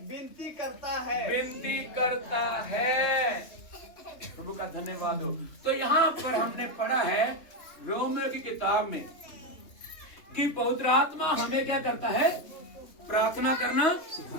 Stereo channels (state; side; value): late; right; 3.2 ms